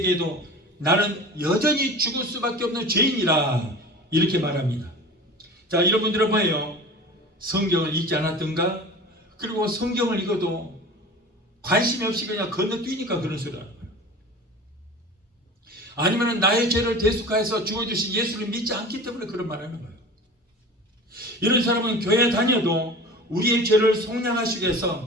나는 여전히 죽을 수밖에 없는 죄인이라 이렇게 말합니다. 자, 이런 분들은 뭐예요? 성경을 읽지 않았던가? 그리고 성경을 읽어도 관심이 없이 그냥 건너뛰니까 그런 소리를 하는 거예요. 아니면 나의 죄를 대속하여서 죽어주신 예수를 믿지 않기 때문에 그런 말을 하는 거예요. 이런 사람은 교회 다녀도 우리의 죄를 속량하시기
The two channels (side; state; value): both; normal; correlation 0.37